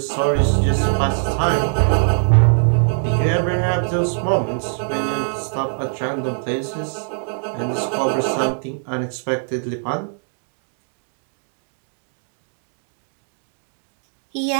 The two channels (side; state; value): left; silent; digital silence